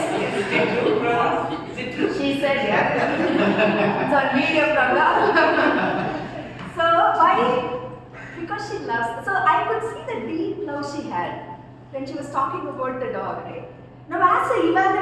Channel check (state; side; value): identical; both; correlation 1.00